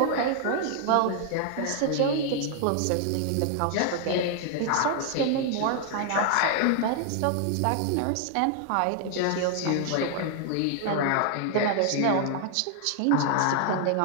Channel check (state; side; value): different; both; correlation 0.00